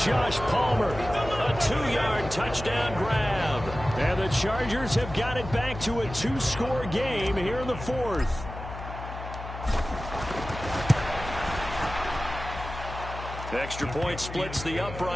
Josh Palmer, a 2-yard touchdown grab. And the Chargers have got it back to a 2-score game here in the 4th. Extra point splits the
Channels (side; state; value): left; noise; hum, 10 dB below the sound